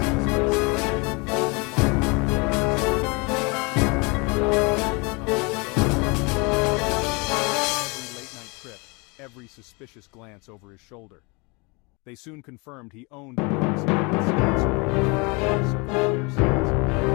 every suspicious glance over his shoulder. They soon confirmed he owned the Arsonist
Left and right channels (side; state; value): right; quieter; 29.1 dB